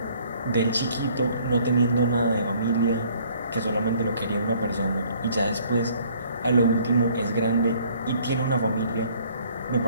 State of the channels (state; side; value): inverted; both; correlation -0.59